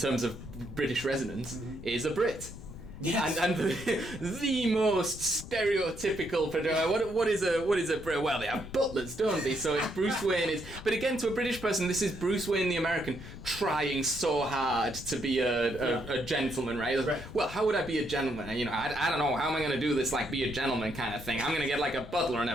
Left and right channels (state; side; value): noise; left; rumble, 13 dB below the sound